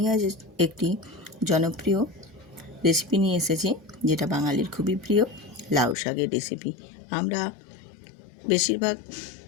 আজ একটি জনপ্রিয় রেসিপি নিয়ে এসেছি, যেটা বাঙালির খুবই প্রিয় লাউ শাকের রেসিপি। আমরা বেশিরভাগ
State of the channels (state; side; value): drops out; right; at 6.0 s